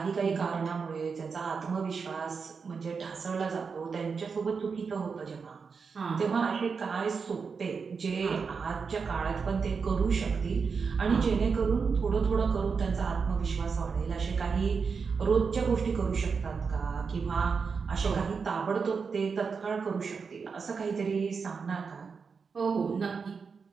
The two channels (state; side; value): quieter; left; 5.4 dB